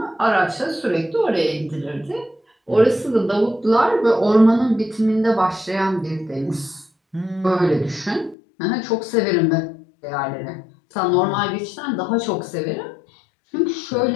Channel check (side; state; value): right; drops out; at 8.3 s